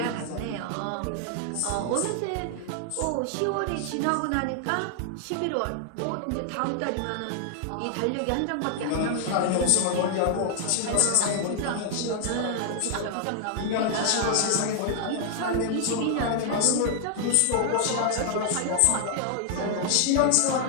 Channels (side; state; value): both; different; correlation 0.00